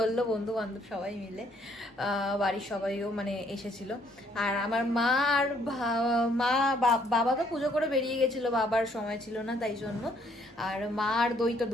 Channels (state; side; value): normal; both; correlation 0.66